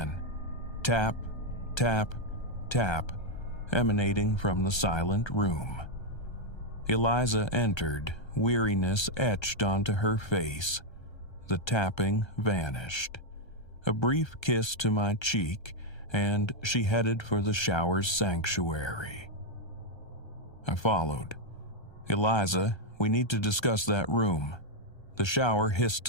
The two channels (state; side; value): late; right; 1.3 ms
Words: Tap, tap, tap, emanating from the silent room. Eliza entered, weariness etched onto her face. The tapping vanished. A brief kiss to my cheek, and she headed for the shower's sanctuary. I followed. "Eliza, we need to discuss that room." The shower hissed